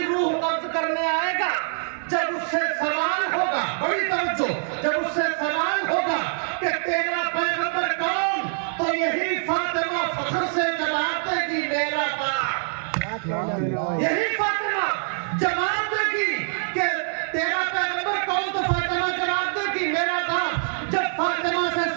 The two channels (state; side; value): silent; left; digital silence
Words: روح قبض کرنے آئے گا، جب اس سے سوال ہوگا، بڑی توجہ، جب اس سے سوال ہوگا کہ تیرا پیغمبر کون، تو یہی فاطمہ فخر سے جواب دے گی میرا باپ۔ یہی فاطمہ جواب دے گی کہ تیرا پیغمبر کون، تو فاطمہ جواب دے گی میرا باپ۔ جب فاطمہ سے